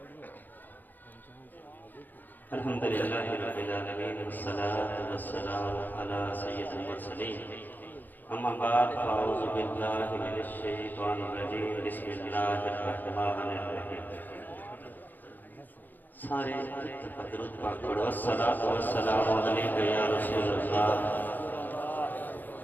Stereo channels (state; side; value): late; right; 0.087 ms